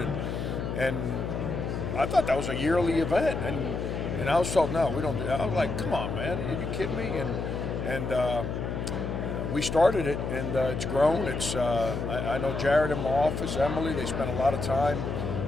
and I thought that was a yearly event, and I was told, no, we don't do that. I was like, come on, man, are you kidding me? And we started it, and it's grown. I know Jared in my office, Emily, they spent a lot of time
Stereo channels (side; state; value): left; noise; hum, 3 dB below the sound